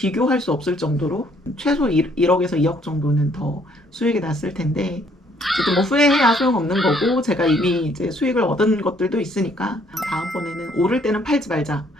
수 없을 정도로 최소 1억에서 2억 정도는 더 수익이 났을 텐데 저도 뭐 후회해야 소용없는 거고 제가 이미 이제 수익을 얻은 것들도 있으니까 다음번에는 오를 때는 팔지 말자.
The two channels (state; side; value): normal; both; correlation 0.65